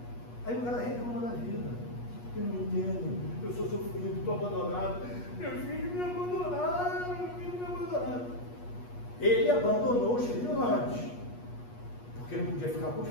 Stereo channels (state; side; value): late; right; 8.3 ms